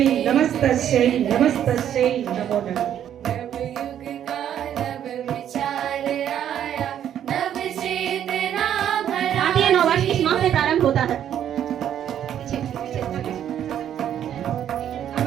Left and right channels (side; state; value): left; quieter; 10.1 dB